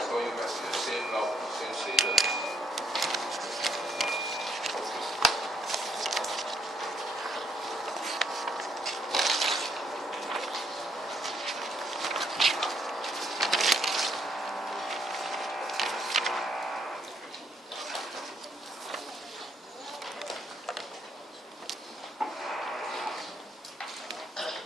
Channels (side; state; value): both; normal; correlation 0.72